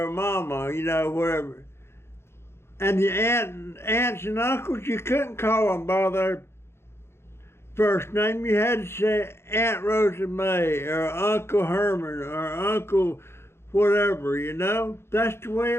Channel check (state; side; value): late; right; 0.12 ms